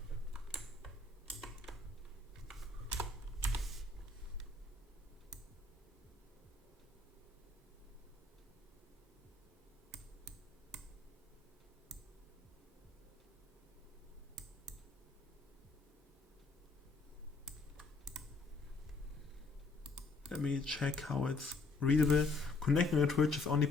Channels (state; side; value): quieter; right; 3.5 dB